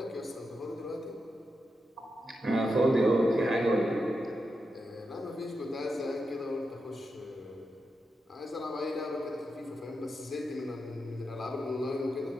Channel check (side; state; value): both; normal; correlation 0.87